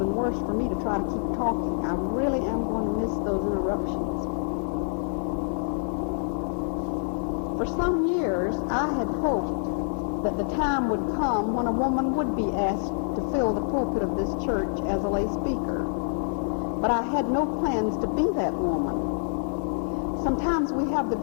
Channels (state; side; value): silent; right; 57 dB below the other